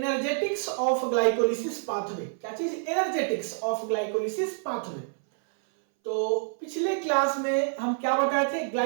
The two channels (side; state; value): left; silent; 60 dB below the other